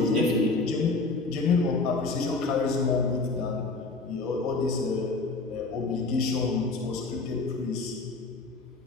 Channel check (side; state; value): right; quieter; 3.6 dB